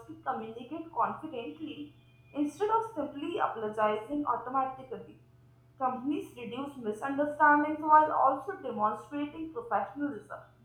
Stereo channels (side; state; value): both; identical; correlation 1.00